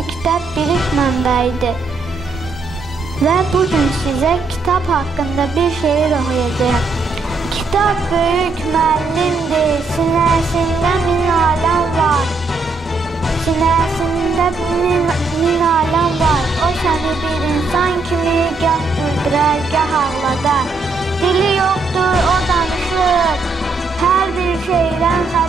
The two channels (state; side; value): quieter; left; 3.8 dB